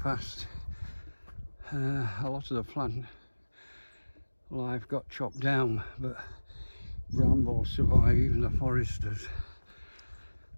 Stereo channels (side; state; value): both; inverted; correlation -1.00